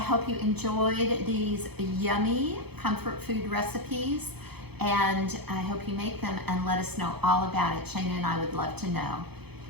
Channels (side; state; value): left; late; 0.97 ms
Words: you enjoyed these yummy comfort food recipes, and I hope you make them and let us know all about it. Shayna and I would love to know.